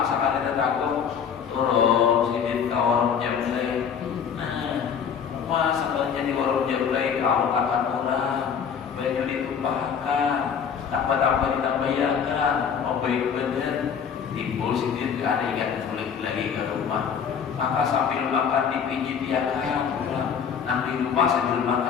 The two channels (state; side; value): quieter; right; 7.2 dB